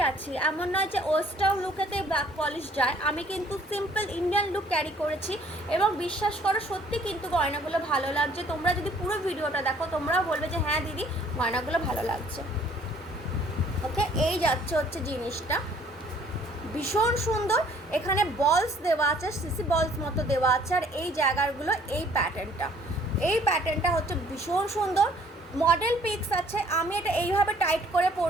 আছি, এমন নয় যে ওয়েস্টার্ন লুকেতে ব্ল্যাক পলিশ যায়। আমি কিন্তু সিম্পল ইন্ডিয়ান লুক ক্যারি করেছি, এবং বিশ্বাস করো সত্যি কিন্তু গয়নাগুলো ভালো লাগছে। তোমরা যদি পুরো ভিডিওটা দেখো তোমরাও বলবে যে হ্যাঁ দিদি গয়নাগুলো ভালো লাগছে। ওকে, এই যাচ্ছে হচ্ছে জিনিসটা, ভীষণ সুন্দর। এখানে বলস দেওয়া আছে, সিসি বলস মতো দেওয়া আছে, আর এই জায়গাগুলো এই প্যাটার্নটা হচ্ছে ভীষণ সুন্দর। মডেল পিক্স আছে, আমি এটা এইভাবে টাইট করে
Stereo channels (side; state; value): both; normal; correlation 0.59